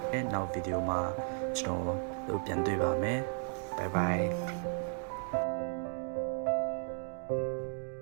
နောက်ဗီဒီယိုမှာကျွန်တော်တို့ပြန်တွေ့ပါမယ် bye bye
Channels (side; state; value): left; silent; 55 dB below the other